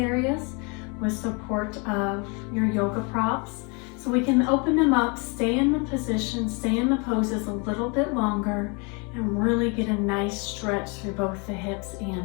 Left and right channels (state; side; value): quieter; right; 32.2 dB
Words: with support of your yoga props. So we can open them up, stay in the position, stay in the poses a little bit longer, and really get a nice stretch through both the hips